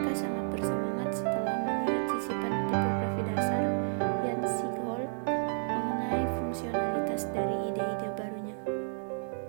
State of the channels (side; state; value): left; silent; 57 dB below the other